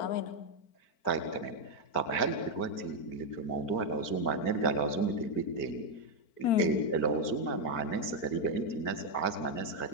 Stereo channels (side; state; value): right; late; 4.5 ms